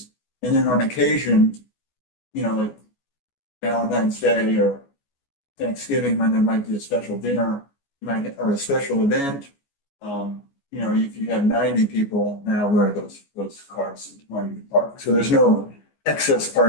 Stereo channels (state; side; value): late; right; 14 ms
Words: And then on occasion, you know, like Valentine's Day or Thanksgiving, when there might be a special dinner, or a special event, you know, if you have 90 people now, where those cars want to park. So there's no excess